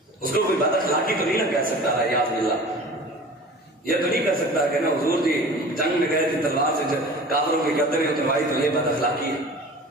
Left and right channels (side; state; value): both; normal; correlation 0.40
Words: اس کو کوئی بد اخلاقی تو نہیں نہ کہہ سکتا ہے، یاد باللہ یہ تو نہیں کہہ سکتا کہ نا حضور جی جنگ میں گئے تھے تلوار سے کافروں کی گردنیں اتروائی تو یہ بد اخلاقی ہے۔